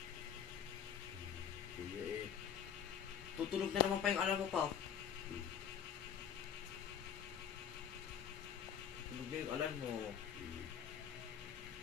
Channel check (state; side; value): quieter; right; 8.6 dB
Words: Kuya eh. Tutunog na naman pa yung alarm mo pa. Tutunog na yung alarm mo.